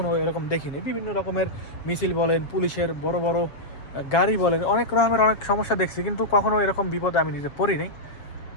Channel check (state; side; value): late; right; 7.2 ms